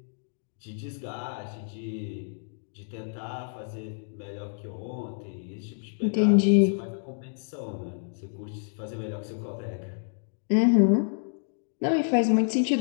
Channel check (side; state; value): right; silent; digital silence